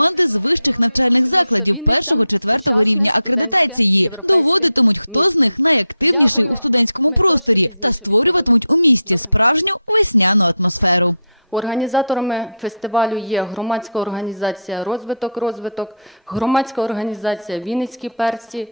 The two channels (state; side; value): inverted; both; correlation -0.71